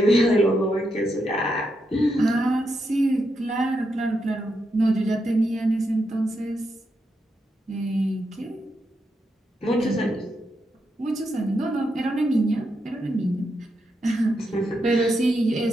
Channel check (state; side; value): normal; both; correlation 0.83